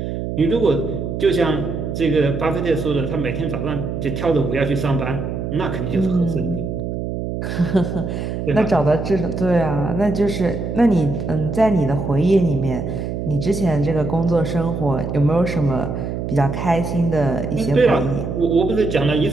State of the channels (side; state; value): right; noise; hum, 4 dB below the sound